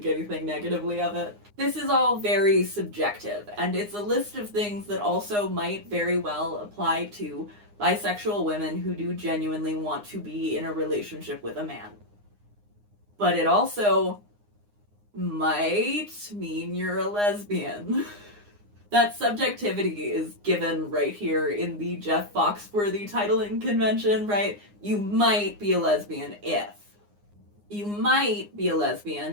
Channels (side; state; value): left; late; 9.7 ms